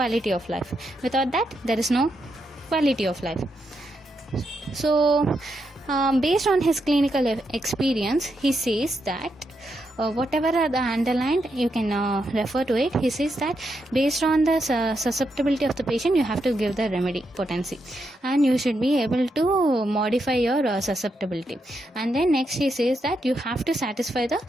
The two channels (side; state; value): both; normal; correlation 0.82